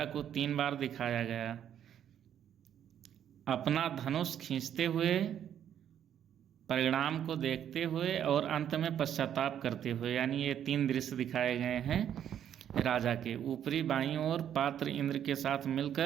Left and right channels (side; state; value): left; quieter; 9.8 dB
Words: को 3 बार दिखाया गया, अपना धनुष खींचते हुए, परिणाम को देखते हुए और अंत में पश्चाताप करते हुए। यानी ये 3 दृश्य दिखाए गए हैं राजा के। ऊपरी बाईं ओर पात्र इंद्र के साथ